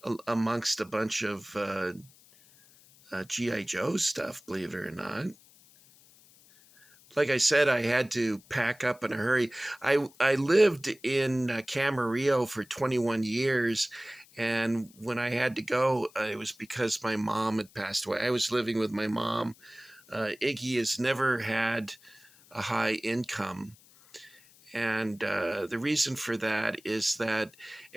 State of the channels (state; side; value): noise; left; hiss, 26 dB below the sound